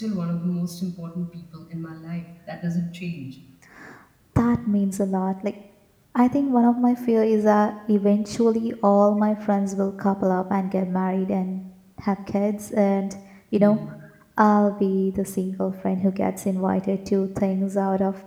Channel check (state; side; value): identical; both; correlation 1.00